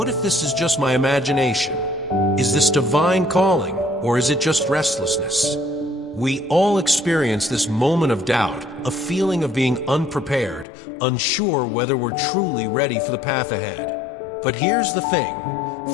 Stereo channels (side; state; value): right; drops out; at 10.7 s